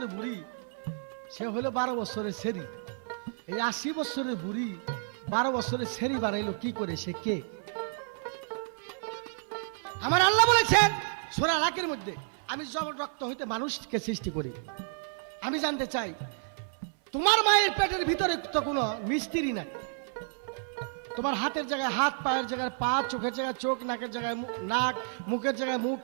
বুড়ি, সে হলো 12 বছরের সেরি। এই 80 বছরের বুড়ি 12 বছরের সেরি বানাইলো কি করে? সে কে? আমার আল্লাহ বলেছেন সূরা আলাকের মধ্যে, আমি জমাট রক্ত হইতে মানুষকে সৃষ্টি করি। আমি জানতে চাই, তোমার মায়ের পেটের ভিতরে তো কোনো মিস্ত্রি নাই। তোমার হাতের জায়গায় হাত, পায়ের জায়গায় পা, চোখের জায়গায় চোখ, নাকের জায়গায় নাক, মুখের জায়গায় মুখ,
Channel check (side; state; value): left; silent; 57 dB below the other